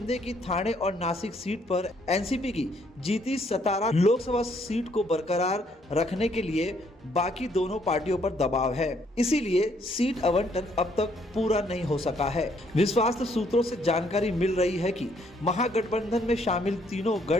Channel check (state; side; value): normal; both; correlation 0.68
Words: की ठाणे और नासिक सीट पर एनसीपी की जीती सतारा लोकसभा सीट को बरकरार रखने के लिए बाकी दोनों पार्टियों पर दबाव है। इसीलिए सीट आवंटन अब तक पूरा नहीं हो सका है। विश्वस्त सूत्रों से जानकारी मिल रही है कि महागठबंधन में शामिल तीनों